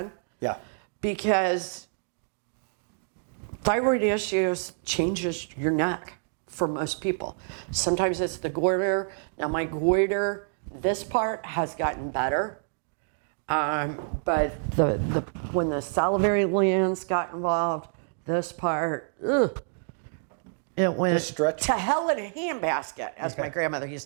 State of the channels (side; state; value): left; silent; digital silence